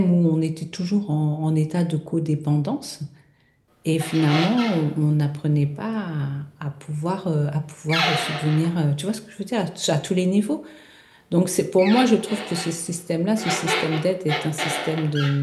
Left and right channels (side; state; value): both; identical; correlation 1.00